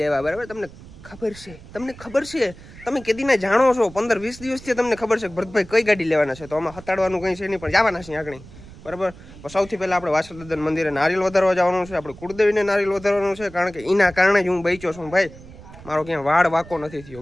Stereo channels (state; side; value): noise; right; rumble, 18 dB below the sound